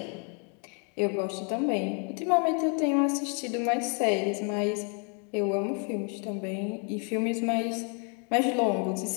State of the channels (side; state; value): right; quieter; 37.4 dB